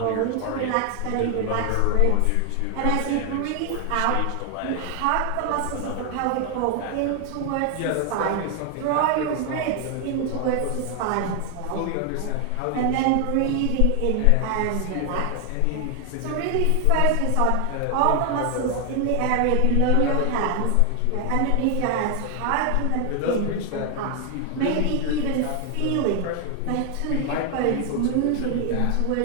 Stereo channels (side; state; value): both; different; correlation 0.00